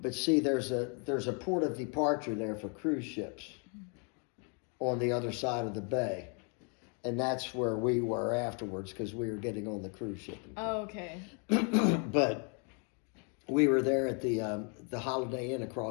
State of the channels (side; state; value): right; quieter; 37.4 dB